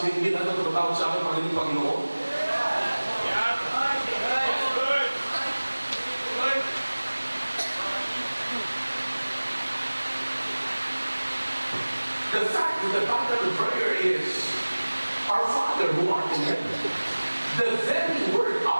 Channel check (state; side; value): inverted; both; correlation -1.00